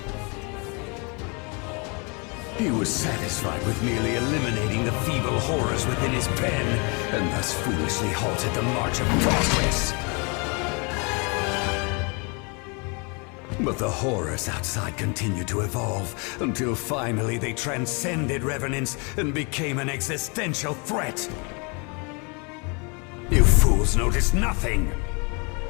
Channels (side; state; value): right; quieter; 32.5 dB